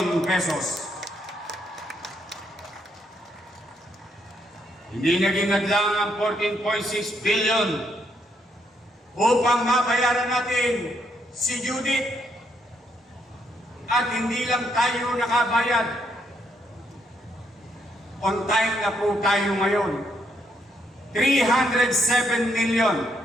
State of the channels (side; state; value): both; normal; correlation 0.75